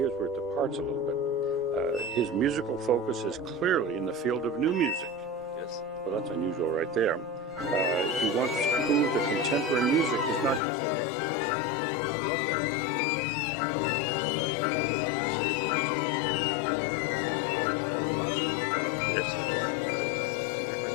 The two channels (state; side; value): drops out; right; at 10.6 s